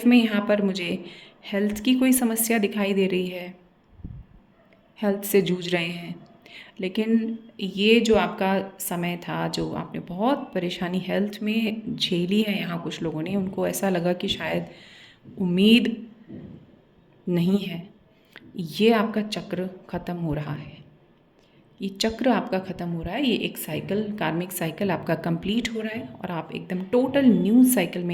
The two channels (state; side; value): identical; both; correlation 1.00